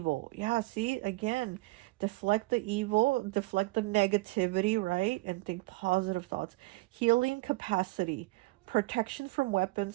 Yeah, see, again, deflect the evil, deflect the negativity, right? And think positive thoughts. Healing capacity, protection from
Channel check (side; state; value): left; quieter; 22.3 dB